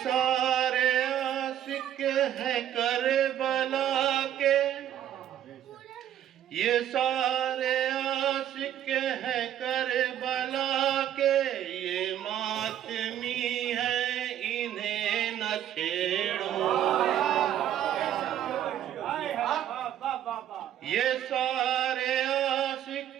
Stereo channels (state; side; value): quieter; left; 10.9 dB